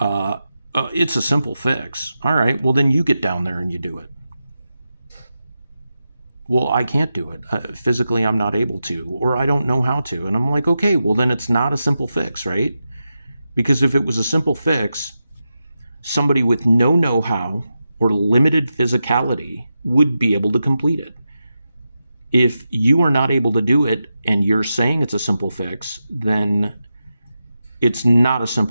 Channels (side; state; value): both; inverted; correlation -0.90